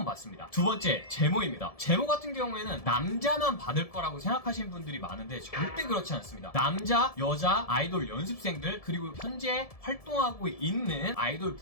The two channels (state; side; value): late; right; 1.7 ms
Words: 받습니다. 두 번째, 제모입니다. 제모 같은 경우에는 남자만 받을 거라고 생각하시는 분들이 많은데 절대 그렇지 않습니다. 남자, 여자, 아이돌 연습생들, 그리고 현재 활동하고 있는 아이돌